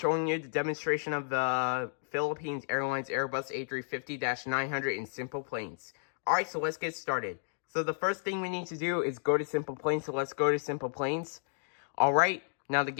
you the demonstration of the Philippines Airlines Airbus A350-900 in SimplePlanes. Alright, so let's get started. So the first thing we need to do is go to SimplePlanes, so let's go to SimplePlanes. Alright, now the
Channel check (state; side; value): silent; right; digital silence